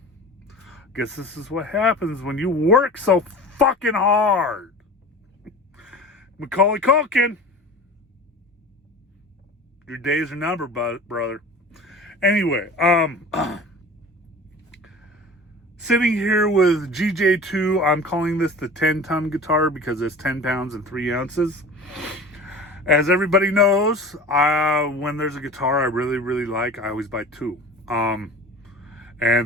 Guess this is what happens when you work so fucking hard. Macaulay Culkin. Your days are numbered, brother. Anyway, sitting here with GJ2. I'm calling this the 10-ton guitar because it's 10 pounds and 3 ounces. As everybody knows, when there's a guitar I really, really like, I always buy 2.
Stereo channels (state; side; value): normal; both; correlation 0.38